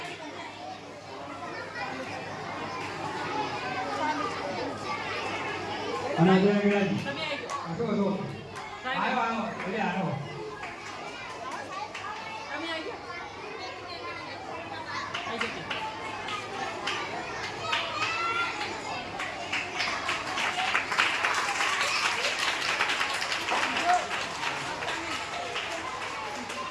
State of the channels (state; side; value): identical; both; correlation 1.00